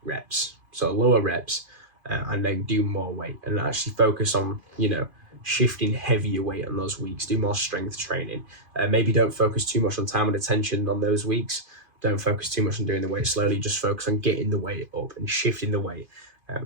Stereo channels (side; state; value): left; late; 2.5 ms